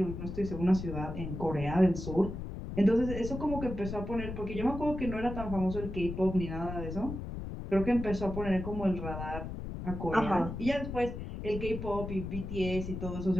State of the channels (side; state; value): left; noise; rumble, 7 dB below the sound